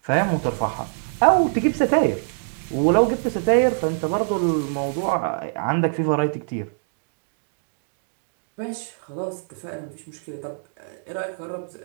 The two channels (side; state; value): left; silent; digital silence